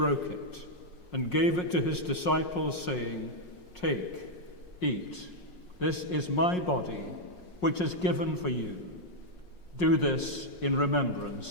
it and gave it to his disciples, saying, "Take, eat. This is my body, which is given for you. Do this in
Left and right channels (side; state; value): right; late; 5.5 ms